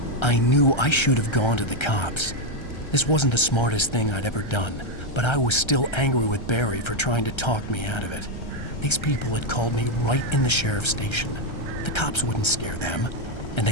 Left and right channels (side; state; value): right; late; 1.3 ms